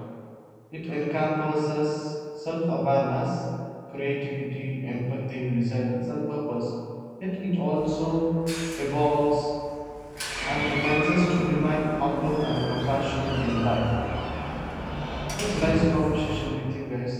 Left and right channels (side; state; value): both; identical; correlation 1.00